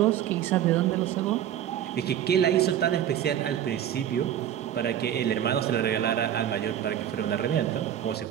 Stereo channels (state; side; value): quieter; left; 10.6 dB